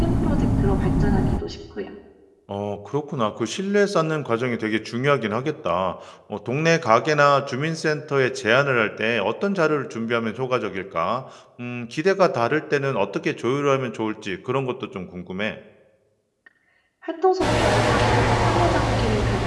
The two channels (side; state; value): both; identical; correlation 1.00